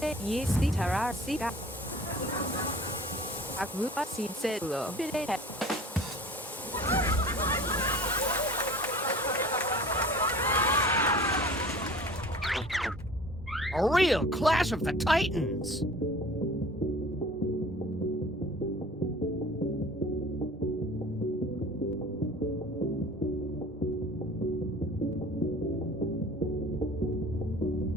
이시타라 시가 아구아 시셀로 비레 A real Clash of the Titans.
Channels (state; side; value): normal; both; correlation 0.43